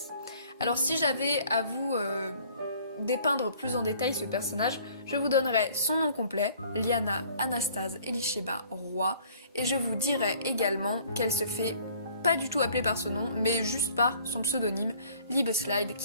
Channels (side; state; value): both; inverted; correlation -0.56